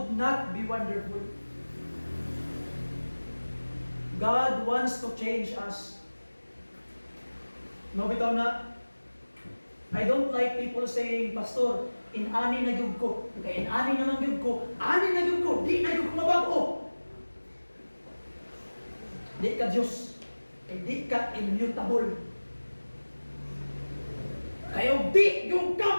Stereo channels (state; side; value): inverted; both; correlation -1.00